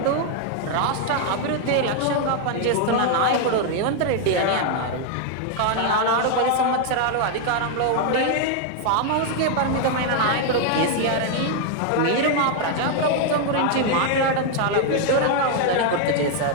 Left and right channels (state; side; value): different; both; correlation 0.00